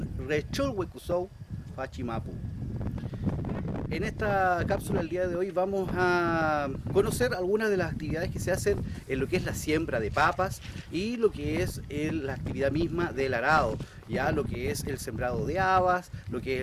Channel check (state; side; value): identical; both; correlation 1.00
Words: rechol huecusou, fachimapu. En esta cápsula del día de hoy vamos a conocer algunas de las actividades que se hacen en lo que es la siembra de papas y lo que es la actividad misma del arado, ya lo que es el sembrado de habas, lo que es